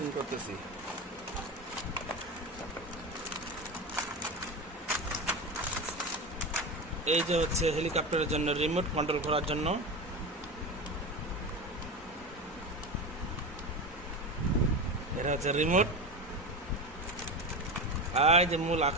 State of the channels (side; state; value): both; normal; correlation 0.22